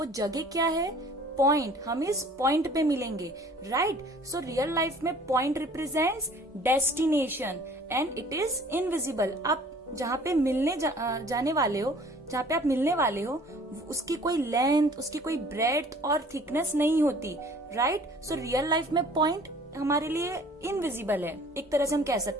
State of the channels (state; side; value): normal; both; correlation 0.51